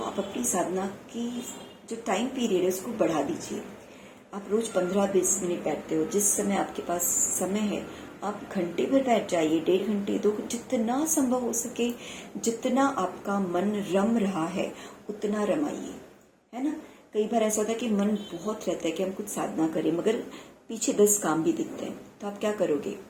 अपनी साधना की जो टाइम पीरियड है उसको बढ़ा दीजिए। आप रोज 15-20 मिनट बैठते हो, जिस समय आपके पास समय है आप घंटे भर बैठ जाइए, 1.5 घंटे, 2, जितना संभव हो सके, जितना आपका मन रम रहा है उतना रमाइए, है ना? कई बार ऐसा होता है कि मन बहुत रहता है कि हम कुछ साधना करें, मगर पीछे 10 काम भी दिखते हैं। तो आप क्या करोगे?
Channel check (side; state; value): both; identical; correlation 1.00